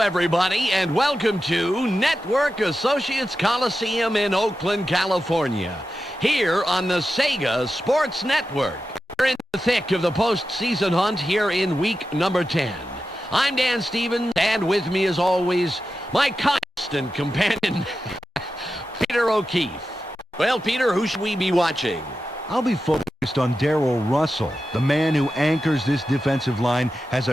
and welcome to Network Associates Coliseum in Oakland, California, here on the Sega Sports Network. We're in the thick of the postseason hunt here in week number 10. I'm Dan Stevens, and with me, as always, my constant companion, Peter O'Keefe. Well, Peter, who should we be watching? I'll be focused on Darrell Russell. The man who anchors this defensive line has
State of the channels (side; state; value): both; normal; correlation 0.91